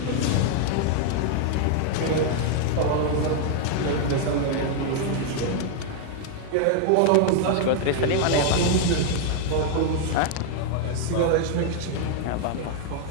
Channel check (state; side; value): different; both; correlation 0.00